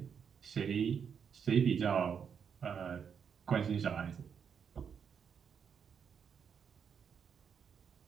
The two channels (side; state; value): left; quieter; 7.1 dB